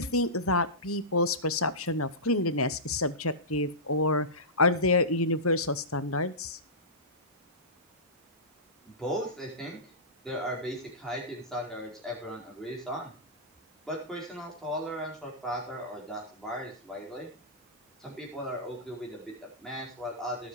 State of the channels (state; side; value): normal; both; correlation -0.19